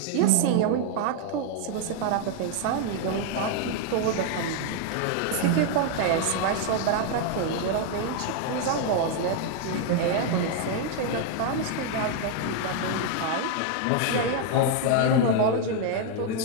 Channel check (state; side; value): different; both; correlation 0.00